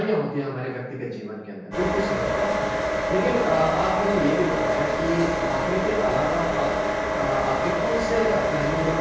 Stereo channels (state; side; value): identical; both; correlation 1.00